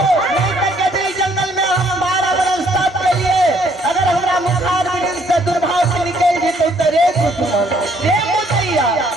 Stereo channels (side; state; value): both; normal; correlation 0.65